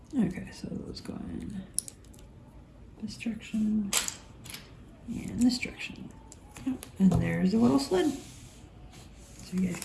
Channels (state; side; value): identical; both; correlation 1.00